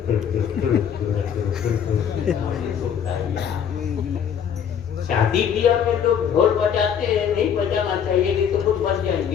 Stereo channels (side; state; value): right; quieter; 8.2 dB